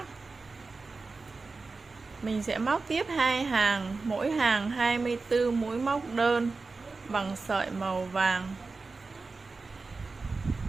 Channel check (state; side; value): quieter; left; 4.0 dB